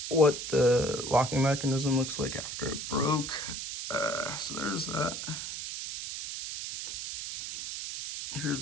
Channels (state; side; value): noise; right; hiss, 6 dB below the sound